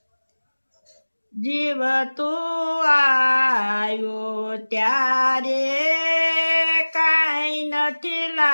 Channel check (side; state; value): both; inverted; correlation -1.00